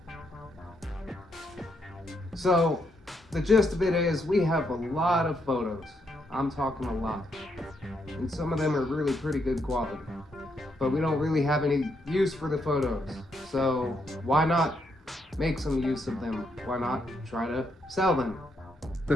So the gist of it is we have a lot of photos. I'm talking a lot. And some of them are really pretty good quality. But we don't really have any use for the photos. So why not make some use of them? Why not try to sell them?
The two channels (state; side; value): normal; both; correlation 0.77